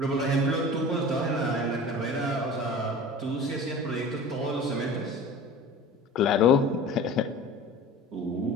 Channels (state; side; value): normal; both; correlation 0.39